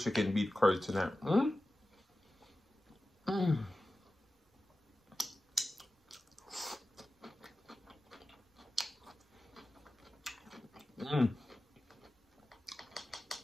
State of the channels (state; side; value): normal; both; correlation 0.94